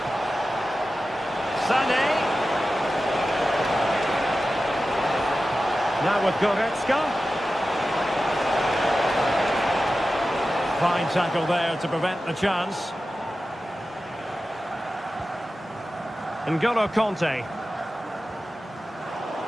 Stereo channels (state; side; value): normal; both; correlation 0.94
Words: Sané. Now with Goretzka. Fine tackle there to prevent the chance. N'Golo Kanté.